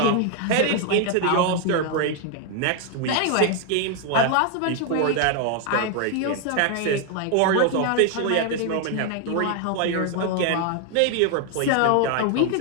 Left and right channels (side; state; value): both; different; correlation 0.00